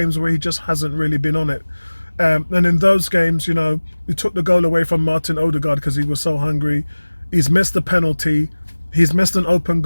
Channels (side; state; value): both; inverted; correlation -1.00